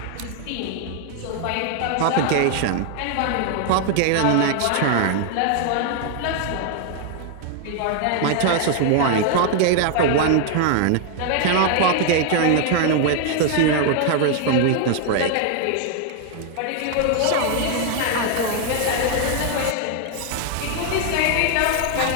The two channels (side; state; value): both; different; correlation 0.00